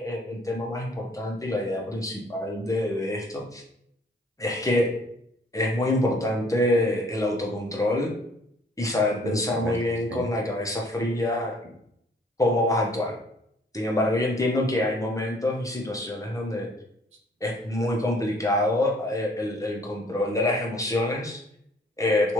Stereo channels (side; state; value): both; normal; correlation 0.58